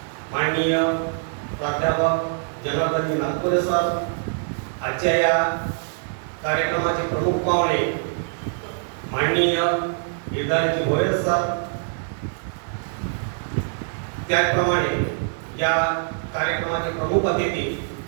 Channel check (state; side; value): silent; left; 63 dB below the other